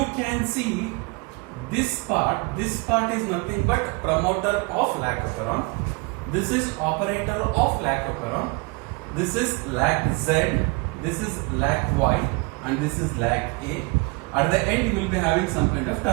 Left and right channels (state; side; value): quieter; left; 28.5 dB